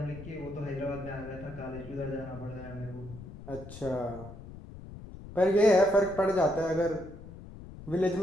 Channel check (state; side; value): noise; left; rumble, 14 dB below the sound